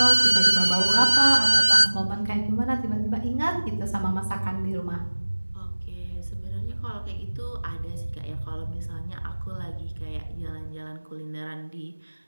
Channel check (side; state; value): both; inverted; correlation -1.00